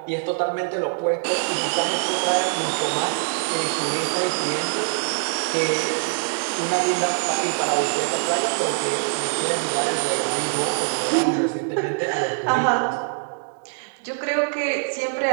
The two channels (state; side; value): silent; left; 63 dB below the other